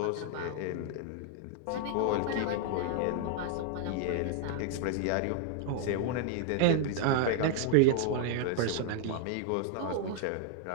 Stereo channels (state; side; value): different; both; correlation 0.00